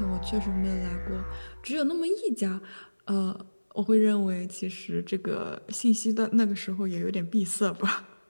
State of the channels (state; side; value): inverted; both; correlation -1.00